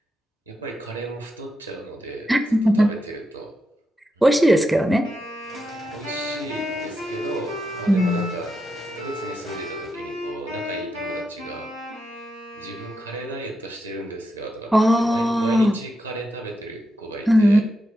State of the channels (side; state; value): both; normal; correlation 0.85